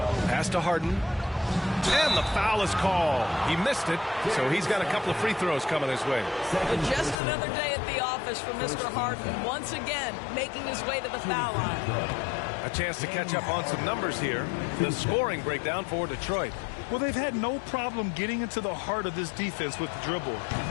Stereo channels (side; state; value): right; drops out; at 7.2 s